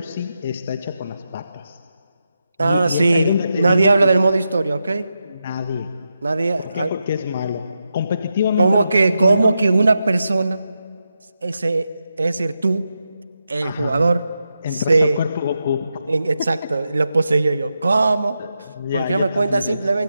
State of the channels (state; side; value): inverted; both; correlation -0.87